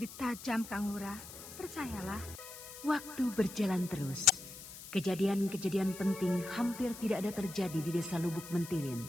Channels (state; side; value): noise; left; hiss, 14 dB below the sound